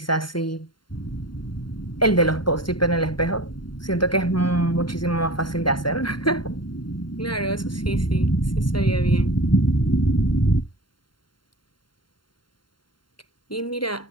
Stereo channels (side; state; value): right; late; 0.72 ms